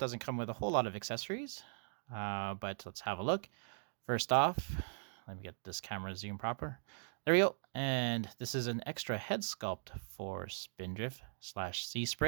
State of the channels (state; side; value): silent; left; digital silence